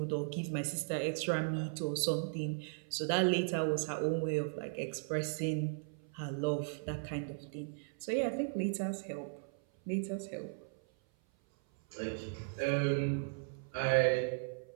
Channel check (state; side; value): silent; left; 53 dB below the other